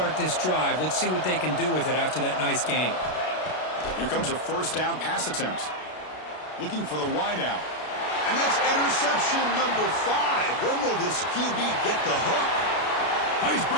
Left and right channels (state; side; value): late; right; 33 ms